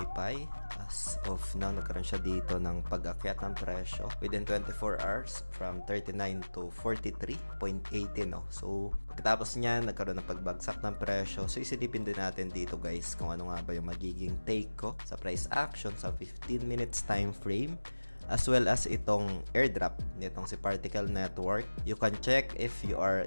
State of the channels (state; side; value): inverted; both; correlation -1.00